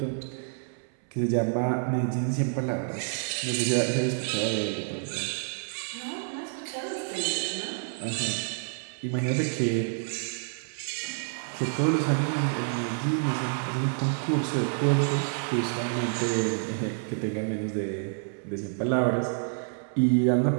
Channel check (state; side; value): silent; left; 59 dB below the other